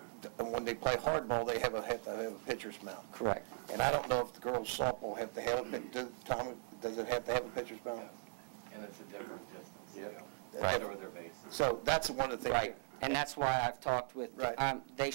when they play hardball, they have to have a pitcher's mound. Correct. And I don't know if the girls softball have to have Tom, does it have to have a pitcher's mound? And it's a different distance. Yeah. Right. Over their bases. So that's one of the things. Right, and that's why I've talked with, Right. they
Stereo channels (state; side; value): silent; left; digital silence